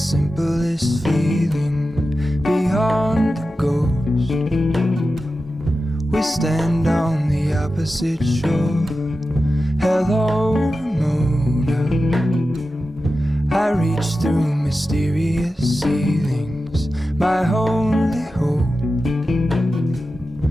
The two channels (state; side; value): normal; both; correlation 0.93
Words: feeling beyond the ghost. We stand on the opposite shore. Hello, Ramona. I reach through mysterious ceilings, my only hope.